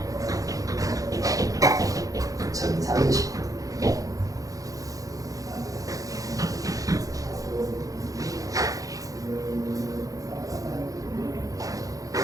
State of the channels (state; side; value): late; left; 0.17 ms